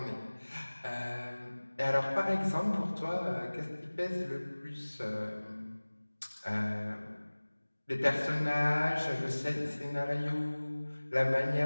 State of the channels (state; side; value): inverted; both; correlation -1.00